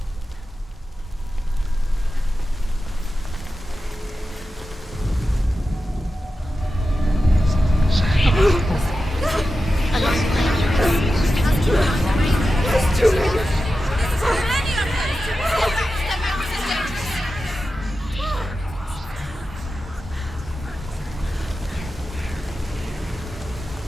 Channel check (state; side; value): normal; both; correlation 0.92